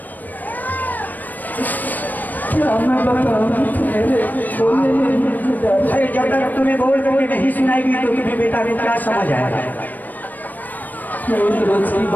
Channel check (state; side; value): late; right; 0.085 ms